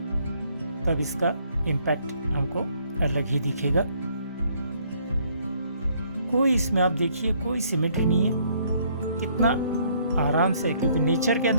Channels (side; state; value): both; inverted; correlation -0.65